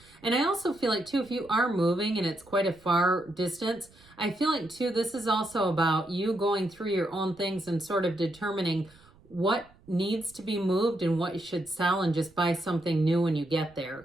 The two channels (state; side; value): noise; right; rumble, 27 dB below the sound